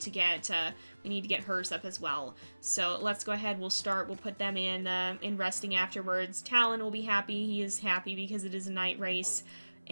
get hers up as well. So let's go ahead. We'll put them in resting afterwards. Talon will be happy. He is happy because it is a night race,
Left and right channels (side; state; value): both; inverted; correlation -1.00